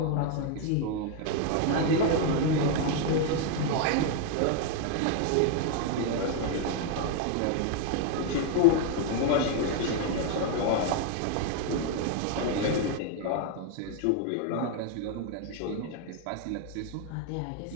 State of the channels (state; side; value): different; both; correlation 0.01